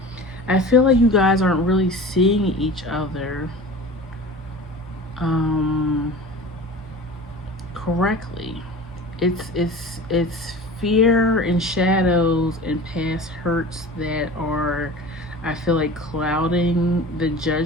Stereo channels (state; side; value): normal; both; correlation 0.37